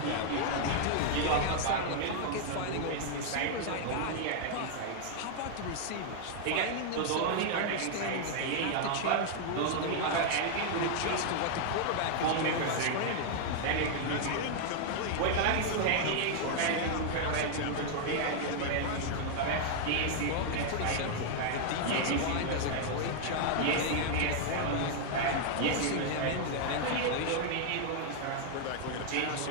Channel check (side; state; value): both; different; correlation 0.00